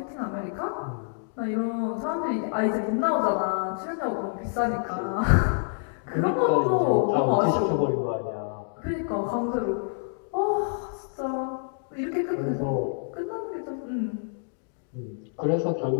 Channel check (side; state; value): right; silent; digital silence